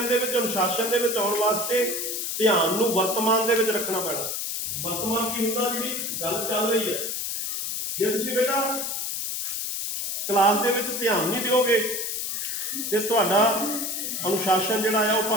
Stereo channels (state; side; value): noise; left; hiss, 2 dB below the sound